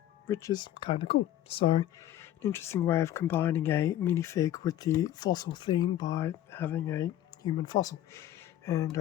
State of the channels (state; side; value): quieter; right; 12.5 dB